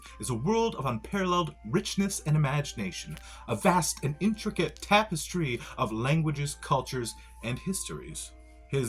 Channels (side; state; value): both; identical; correlation 1.00